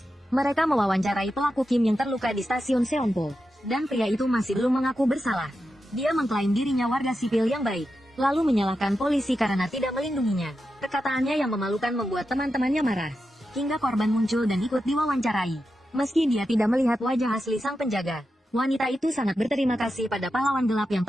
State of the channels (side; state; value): both; normal; correlation 0.89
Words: Mereka mewawancarai pelaku Kim yang terluka di stasiun Seonpo, dan pria itu masih belum mengaku bersalah. Dia mengklaim dirinya warga sipil yang baik, lalu menyalahkan polisi karena tidak melindunginya. Perkataannya yang memalukan membuat teman-temannya marah. Hingga korban muncul dan ikut diwawancarai. Meski dia tidak melihat wajah asli sang penjaga, wanita itu sangat berterima kasih pada pahlawan gelap yang